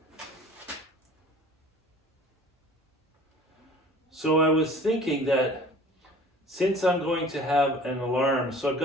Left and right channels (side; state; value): both; normal; correlation 0.46